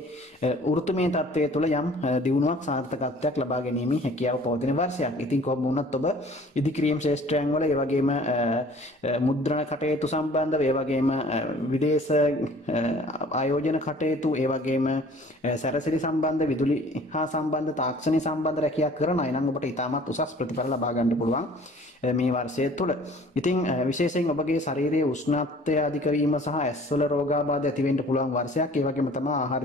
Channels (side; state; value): both; normal; correlation 0.51